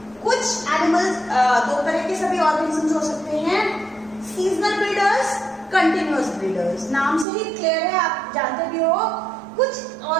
कुछ एनिमल्स, दो तरह के सभी ऑर्गेनिजम्स हो सकते हैं, सीजनल ब्रीडर्स, कंटिन्यूअस ब्रीडर्स. नाम से ही क्लियर है, आप जानते भी हो. कुछ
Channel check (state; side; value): drops out; left; at 7.2 s